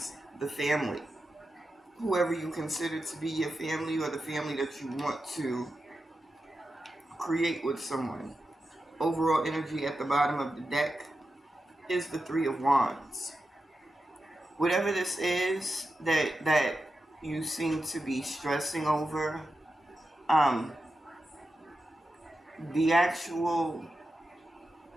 the family. Whoever you consider to be your family or the family that you want to create with someone. Overall energy at the bottom of the deck is the Three of Wands. Whatever this is that you seem to be stressing over, the actual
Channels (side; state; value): both; normal; correlation 0.90